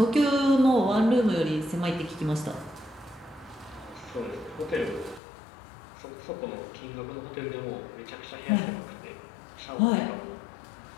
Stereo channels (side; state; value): right; drops out; at 5.2 s